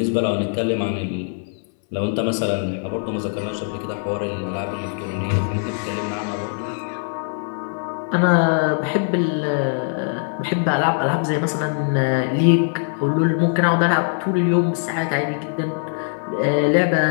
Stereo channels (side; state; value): right; silent; 63 dB below the other